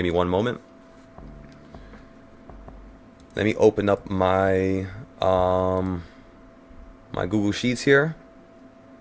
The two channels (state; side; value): identical; both; correlation 1.00